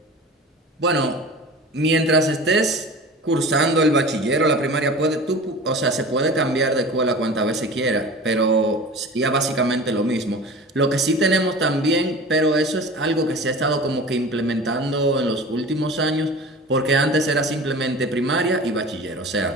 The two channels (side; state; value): both; normal; correlation 0.37